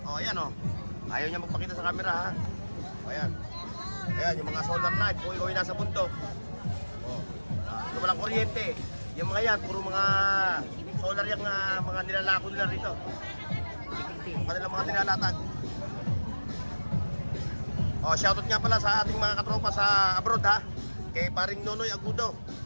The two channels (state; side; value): inverted; both; correlation -1.00